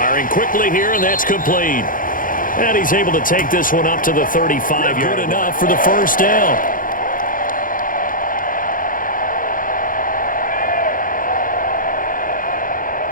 quickly here, and that's complete. And he's able to take this one up to the 35. Good enough for the 1st down.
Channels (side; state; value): right; late; 0.40 ms